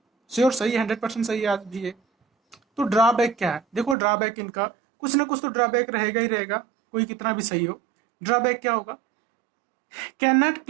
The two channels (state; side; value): drops out; left; at 4.0 s